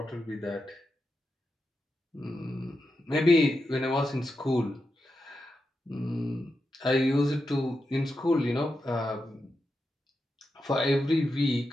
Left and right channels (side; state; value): both; normal; correlation 0.88